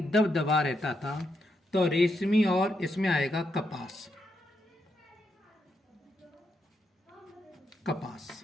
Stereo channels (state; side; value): normal; both; correlation 0.81